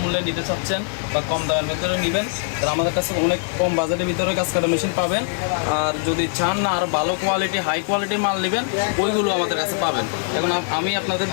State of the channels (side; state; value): right; silent; 60 dB below the other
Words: মূল্যে নিতে চাচ্ছেন বা কম দামের ভিতরে নেবেন, তারা আমাদের কাছে অনেক কম বাজেটের ভিতরে গাছ কাটার মেশিন পাবেন। আর যদি চান না আর ভালো কোয়ালিটি হাই কোয়ালিটির মাল নেবেন, ওইগুলো আমাদের কাছে পাবেন। এখন আমি আপনাদের